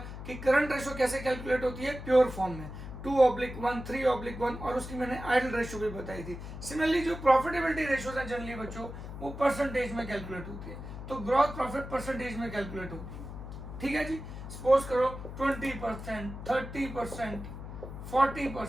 कि करंट रेशियो कैसे कैलकुलेट होती है प्योर फॉर्म में, 2/1, 3/1, और उसकी मैंने आइडल रेशियो भी बताई थी। सिमिलरली जो प्रॉफिटेबिलिटी रेशियोज हैं जनरली बच्चों, वो परसेंटेज में कैलकुलेट होती है। तो ग्रॉस प्रॉफिट परसेंटेज में कैलकुलेट होती है, ठीक है जी। सपोज करो 20%, 30%,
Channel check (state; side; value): noise; left; hum, 10 dB below the sound